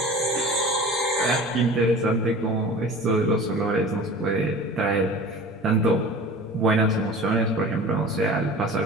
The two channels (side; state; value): both; normal; correlation 0.39